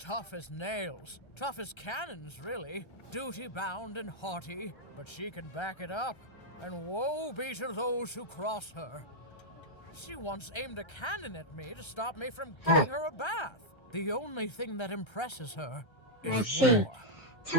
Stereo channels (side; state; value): right; late; 1.3 ms